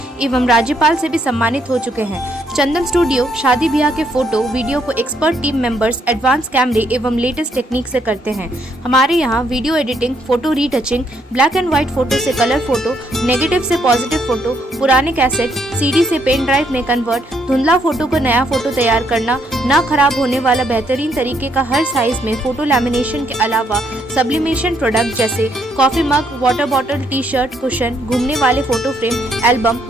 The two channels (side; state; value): both; normal; correlation 0.72